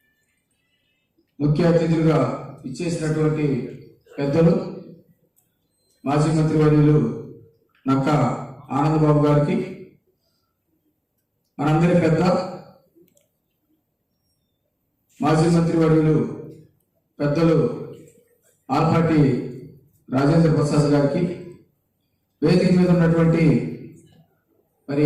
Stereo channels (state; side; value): identical; both; correlation 1.00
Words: ముఖ్య అతిథులుగా ఇచ్చేసినటువంటి పెద్దలు మాజీ మంత్రివర్యులు నక్క ఆనందబాబు గారికి, మనందరి పెద్ద మాజీ మంత్రివర్యులు పెద్దలు ఆలపాటి రాజేంద్ర ప్రసాద్ గారికి, వేదిక మీద ఉన్నటువంటి మరి